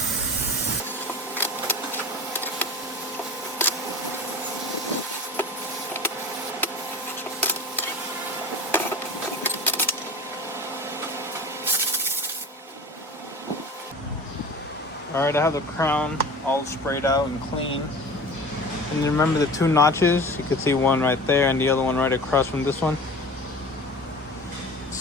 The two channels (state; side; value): normal; both; correlation 0.37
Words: Alright, I have the crown all sprayed out and clean. And remember the two notches? You can see one right there and the other one right across from this one.